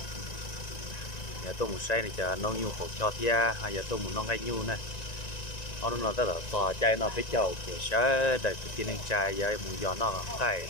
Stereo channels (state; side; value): late; right; 1.9 ms